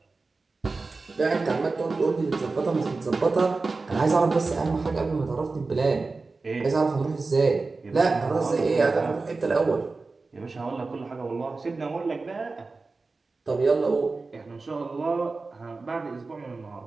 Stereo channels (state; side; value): quieter; left; 3.8 dB